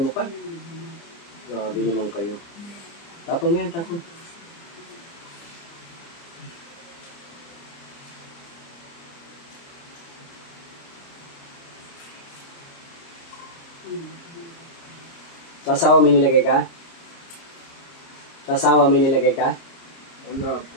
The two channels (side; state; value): right; late; 29 ms